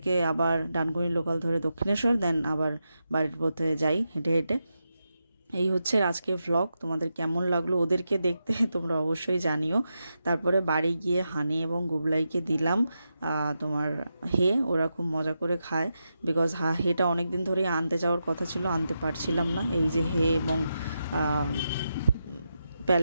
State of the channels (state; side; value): inverted; both; correlation -0.87